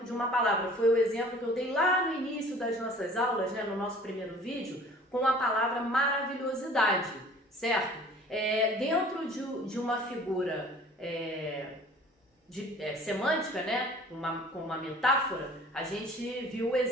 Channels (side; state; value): both; normal; correlation 0.48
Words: de uma palavra. Foi o exemplo que eu dei lá no início das nossas aulas, no nosso primeiro vídeo, com a palavra maravilhosidade, certo? Dentro de uma figura semântica, com uma metáfora, a gente viu o